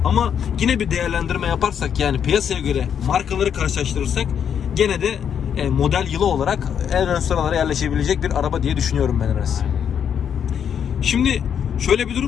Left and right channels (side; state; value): right; quieter; 8.2 dB